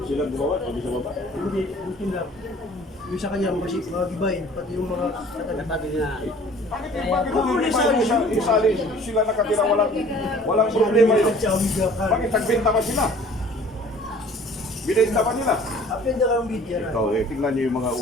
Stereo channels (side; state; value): both; normal; correlation 0.50